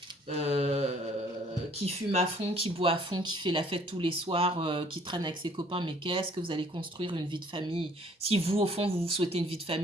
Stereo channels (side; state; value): both; normal; correlation 0.58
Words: qui fume à fond, qui boit à fond, qui fait la fête tous les soirs, qui traîne avec ses copains, mais qu'est-ce que vous allez construire une vie de famille? Si vous, au fond, vous souhaitez une vie de